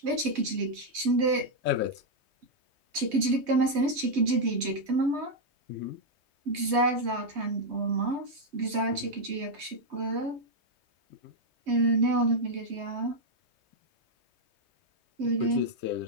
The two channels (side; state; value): left; late; 3.2 ms